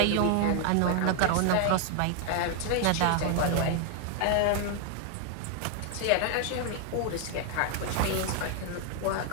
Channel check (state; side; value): different; both; correlation 0.00